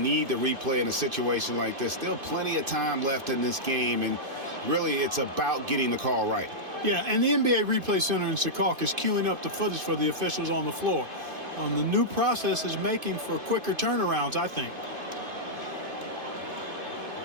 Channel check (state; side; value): late; left; 2.5 ms